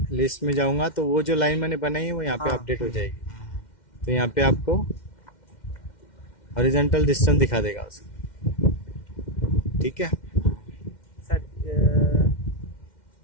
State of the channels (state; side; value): late; right; 2.1 ms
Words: लिस्ट में जाऊंगा तो वो जो लाइन मैंने बनाई है वो यहाँ पे हाँ। अपडेट हो जाएगी। तो यहाँ पे आपको हॉरिजॉन्टल डिस्टेंस दिखा देगा उसको, ठीक है। सर